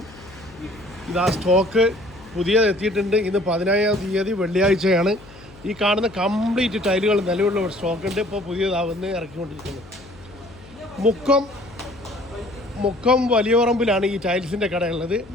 ഇതാ സ്റ്റോക്ക് പുതിയത് എത്തിയിട്ടുണ്ട്. ഇന്ന് 15-ാം തീയതി വെള്ളിയാഴ്ചയാണ്. ഈ കാണുന്ന കംപ്ലീറ്റ് ടൈലുകൾ നിലവിലുള്ള സ്റ്റോക്കുണ്ട്. ഇപ്പോൾ പുതിയതാവുന്ന ഇറക്കിക്കൊണ്ടിരിക്കുന്നത്. മുക്കം വലിയപറമ്പിലാണ് ഈ ടൈൽസിൻ്റെ കടയുള്ളത്.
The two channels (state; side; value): noise; left; hum, 22 dB below the sound